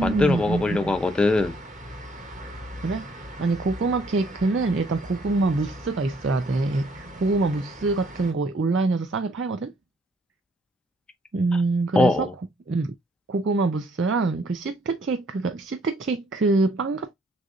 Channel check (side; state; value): both; normal; correlation 0.67